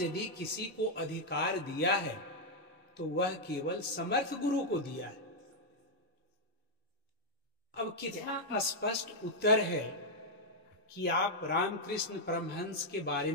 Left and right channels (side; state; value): both; normal; correlation -0.02